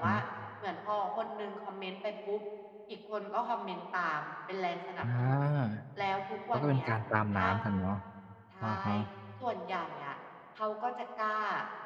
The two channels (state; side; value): identical; both; correlation 1.00